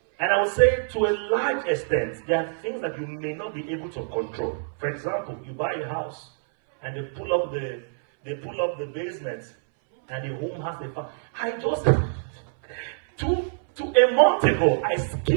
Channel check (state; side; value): silent; left; 61 dB below the other